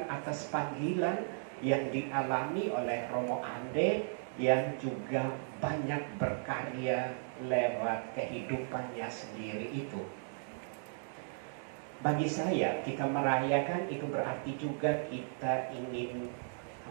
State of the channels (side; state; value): left; silent; digital silence